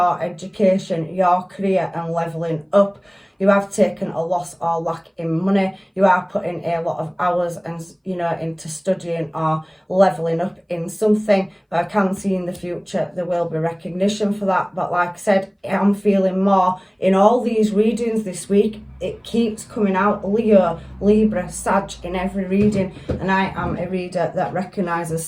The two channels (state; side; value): identical; both; correlation 1.00